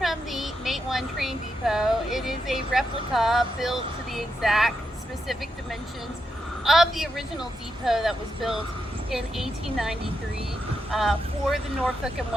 the Matewan train depot. It is a replica built to the exact specific dimensions of the original depot that was built in 1893 for the Norfolk and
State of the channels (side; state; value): both; normal; correlation 0.84